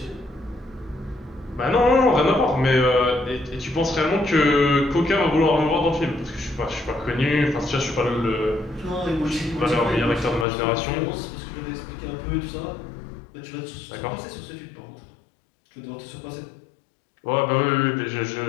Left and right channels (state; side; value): drops out; right; at 10.5 s